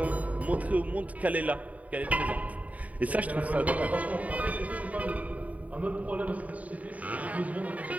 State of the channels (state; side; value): late; left; 0.070 ms